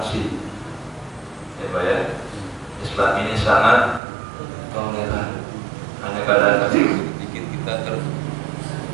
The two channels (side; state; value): left; drops out; at 4.0 s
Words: Ya Pak ya, Islam ini sangat toleran. Hanya kadang-kadang bikin kita